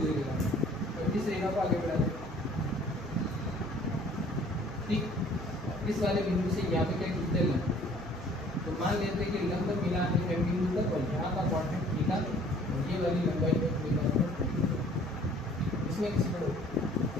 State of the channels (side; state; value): right; noise; hum, 15 dB below the sound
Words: निकालना, तो इस रेखा को आगे बढ़ा दें, ठीक। इस वाले बिंदु से यहाँ पे क्या खींचते हैं, तो मान लेते हैं कि लंब मिला है M बिंदु तक और यहाँ का क्वाड्रेंट थीटा, और ये वाली लंबाई है इसमें किसी पर,